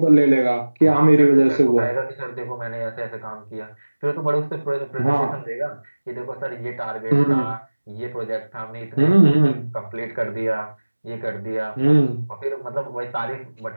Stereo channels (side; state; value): both; inverted; correlation -1.00